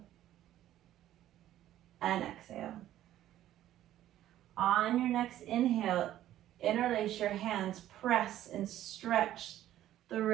and exhale. On your next inhale, interlace your hands, press and stretch the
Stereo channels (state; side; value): quieter; left; 12.9 dB